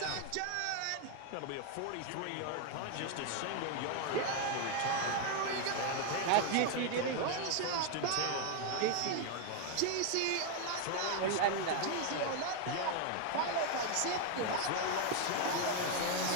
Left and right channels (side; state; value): both; different; correlation 0.01